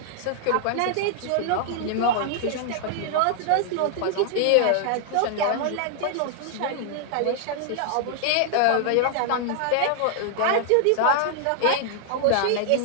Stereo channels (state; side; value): different; both; correlation -0.01